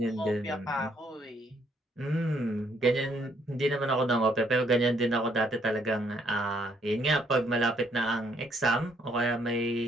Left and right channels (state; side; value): normal; both; correlation 0.69